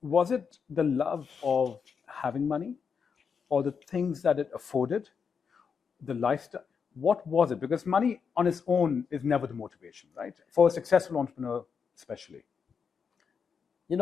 was it the love of having money, or the things that it afforded, the lifestyle? What was it? Because money on its own is never the motivation, right? For a successful entrepreneur, especially.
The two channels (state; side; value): quieter; right; 6.2 dB